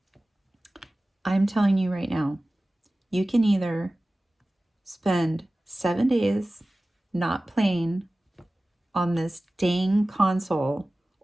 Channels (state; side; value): normal; both; correlation 0.97